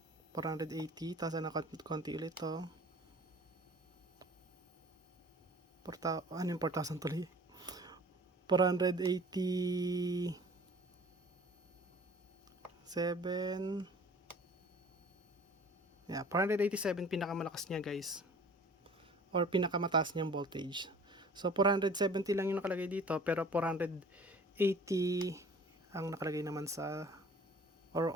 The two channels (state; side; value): normal; both; correlation 0.48